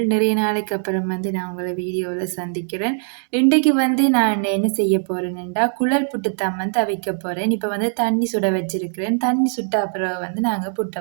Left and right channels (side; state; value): left; silent; 59 dB below the other